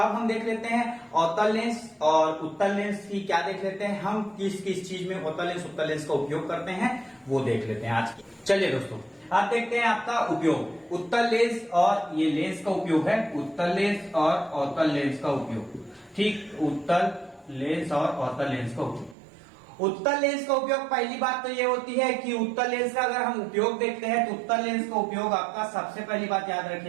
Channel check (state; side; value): drops out; left; at 19.2 s